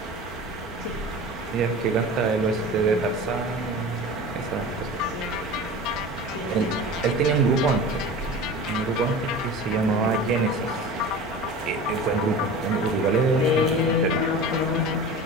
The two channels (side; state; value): both; normal; correlation 0.35